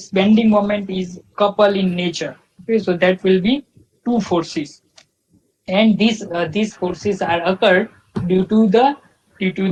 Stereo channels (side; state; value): both; identical; correlation 1.00